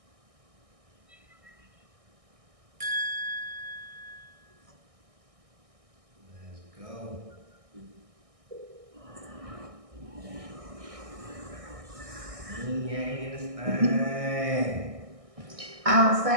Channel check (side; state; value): left; late; 1.6 ms